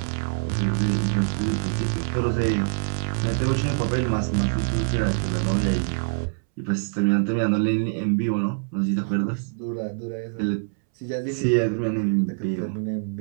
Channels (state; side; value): silent; left; 62 dB below the other